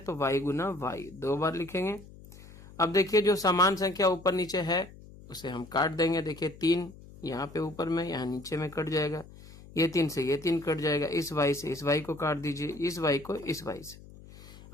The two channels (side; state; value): left; noise; hum, 19 dB below the sound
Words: y गुना y, 2 बार लिखेंगे। अब देखिए जो समान संख्या ऊपर नीचे है उसे हम काट देंगे। देखिए 3 यहाँ पे ऊपर में, यहाँ नीचे में कट जाएगा, ये 3 से ये 3 कट जाएगा, इस y से इस y को काट दीजिए, इस y को इस y से।